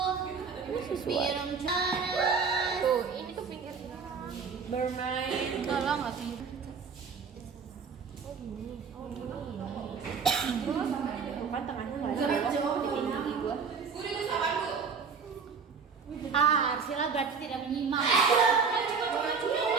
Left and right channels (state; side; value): quieter; left; 5.7 dB